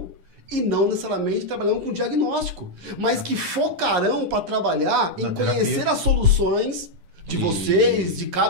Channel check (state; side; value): late; left; 10 ms